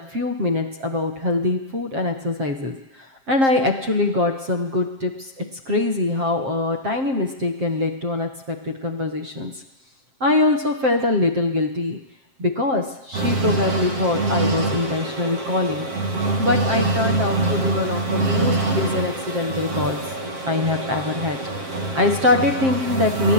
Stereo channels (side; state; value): left; late; 7.5 ms